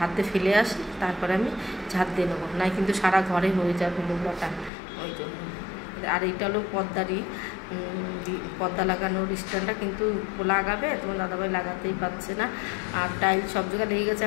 ফেলে আসি, তারপরে আমি ঝাঁট দিয়ে নেবো, নাই কিন্তু সারা ঘরে হয়ে যাবে নোংরাটা, ওই জন্য। আর এইটা হলো পর্দা লাগানোর স্ট্যান্ডটা, কিন্তু লাগাবে, তোমার দাদাভাই লাগাতেই পারছে না। আর টাইলস সব জায়গায় লেগে গেছে।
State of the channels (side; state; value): right; drops out; at 4.7 s